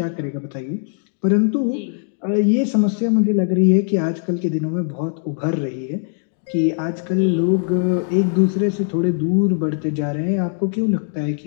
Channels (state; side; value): silent; right; 62 dB below the other